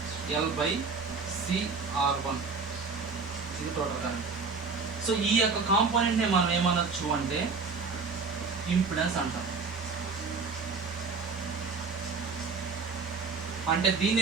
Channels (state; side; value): quieter; left; 4.8 dB